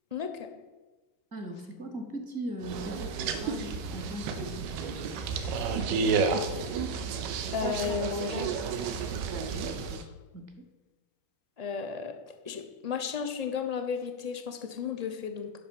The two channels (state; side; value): late; left; 1.8 ms